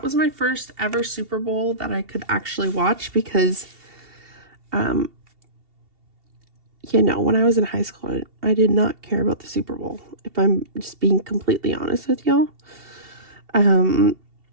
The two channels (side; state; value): left; late; 2.7 ms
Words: was my first ever Super Bowl that I could actually watch because you know, when I was in high school, I did not care about the Super Bowl, if I'm just being completely honest with y'all.